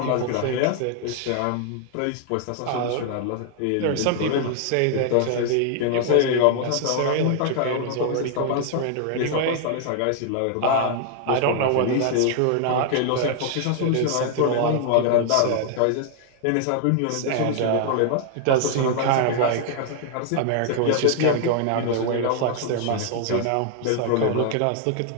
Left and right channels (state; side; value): different; both; correlation 0.00